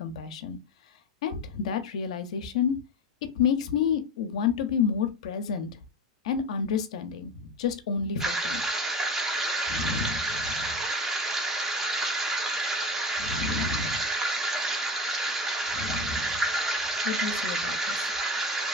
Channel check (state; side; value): normal; both; correlation 0.26